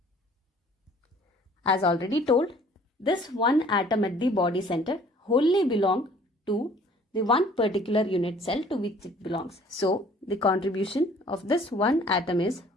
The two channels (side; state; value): both; normal; correlation 0.54